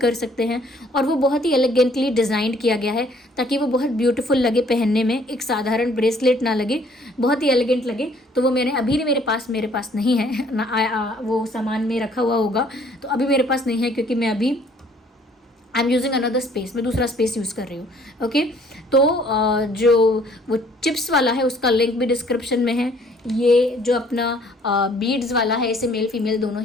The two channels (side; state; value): both; normal; correlation 0.60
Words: सकते हैं। और वो बहुत ही एलिगेंटली डिज़ाइन किया गया है ताकि वो बहुत ब्यूटीफुल लगे पहनने में, एक साधारण ब्रेसलेट ना लगे, बहुत ही एलिगेंट लगे। तो वो मैंने अभी मेरे पास नहीं है ना, वो सामान में रखा हुआ होगा, तो अभी मेरे पास नहीं है क्योंकि मैं अभी I am using another space, मैं दूसरा स्पेस यूज़ कर रही हूँ। ओके, तो जो वो चिप्स वाला है उसका लिंक भी डिस्क्रिप्शन में है। ये जो अपना बीड्स वाला है, इसे मेल फीमेल दोनों